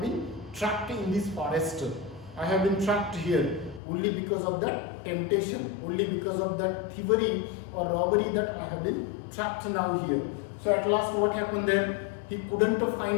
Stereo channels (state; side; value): drops out; right; at 3.8 s